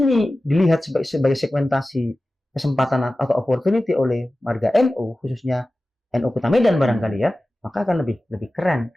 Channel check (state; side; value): normal; both; correlation 0.96